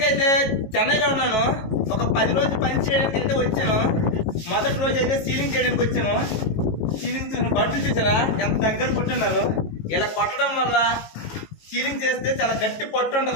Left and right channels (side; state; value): right; late; 18 ms